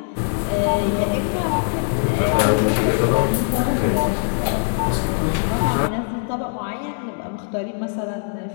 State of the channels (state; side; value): silent; right; digital silence